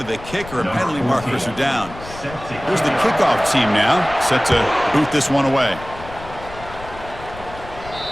the kicker, and penalty markers are down. Here's the kickoff team now, set to boot this one away.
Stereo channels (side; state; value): left; noise; rumble, 15 dB below the sound